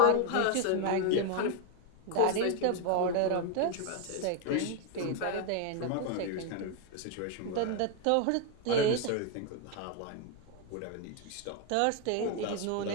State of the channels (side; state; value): both; different; correlation 0.01